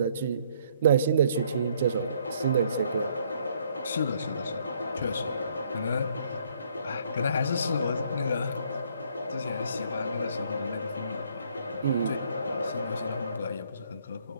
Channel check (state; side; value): inverted; both; correlation -0.66